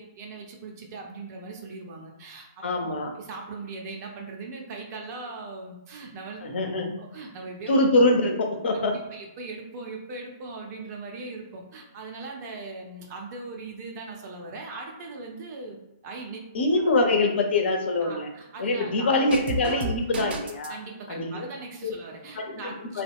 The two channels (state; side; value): inverted; both; correlation -0.47